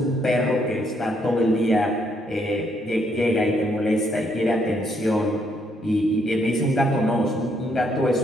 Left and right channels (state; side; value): normal; both; correlation 0.72